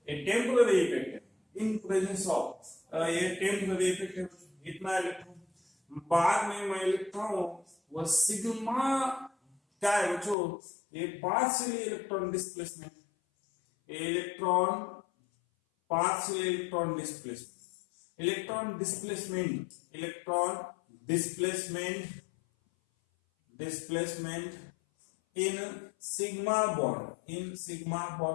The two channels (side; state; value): right; drops out; at 10.4 s